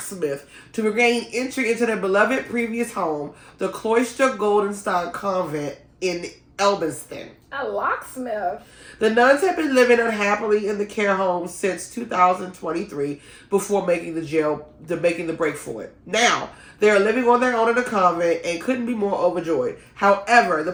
to regain entry into their beloved previous home, the Cloister Goldenstein Convent in Elbiston. A locksmith? The nuns have been living unhappily in the care home since 2023 before making the break for it. Now, they are living on their own in the convent and couldn't be more overjoyed. However, the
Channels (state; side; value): identical; both; correlation 1.00